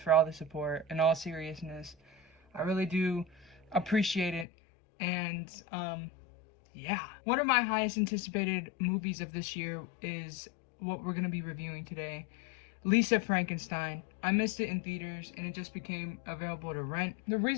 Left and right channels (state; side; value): drops out; right; at 4.5 s